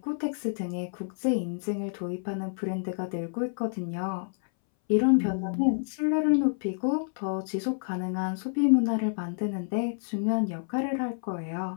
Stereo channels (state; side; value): silent; right; 59 dB below the other